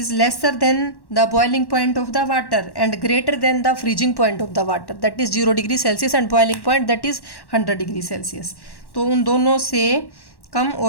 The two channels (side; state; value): right; late; 1.1 ms